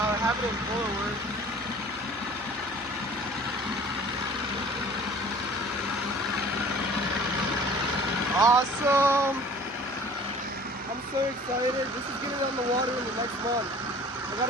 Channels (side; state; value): both; normal; correlation 0.47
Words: I have it in forward. Awesome! I'm so excited. This is getting on the water in the next month. I